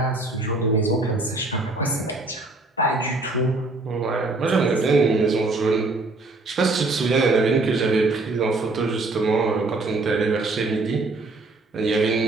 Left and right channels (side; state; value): left; quieter; 3.2 dB